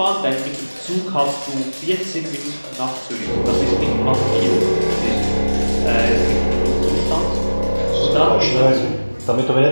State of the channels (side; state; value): both; inverted; correlation -1.00